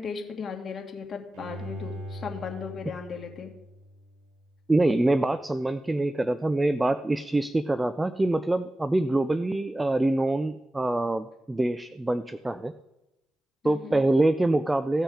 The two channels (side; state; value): both; normal; correlation 0.95